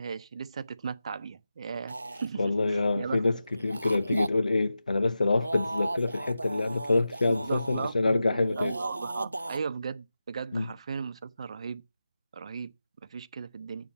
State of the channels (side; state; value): both; inverted; correlation -0.91